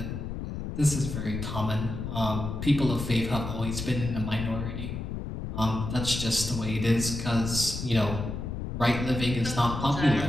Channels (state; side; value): noise; left; rumble, 5 dB below the sound